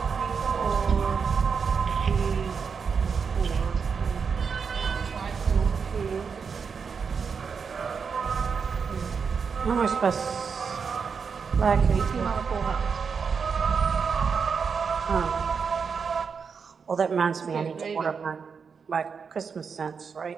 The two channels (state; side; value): quieter; left; 5.9 dB